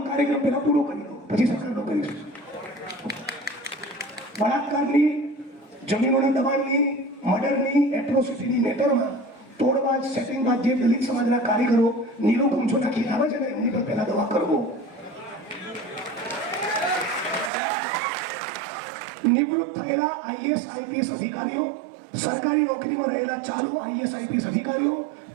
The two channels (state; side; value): drops out; left; at 17.5 s